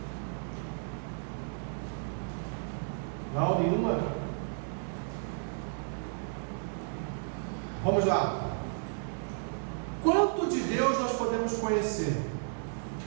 Não, nenhuma? Vamos lá. Quanto de Deus nós podemos conhecer?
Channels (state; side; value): silent; left; digital silence